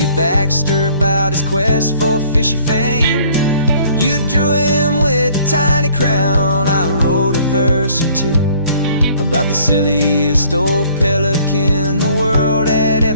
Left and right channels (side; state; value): both; inverted; correlation -0.57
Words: Baxter about his quest for fishy fame. You drew him with a tiny crown, I wrote a verse or two about the silliest old pelican the world had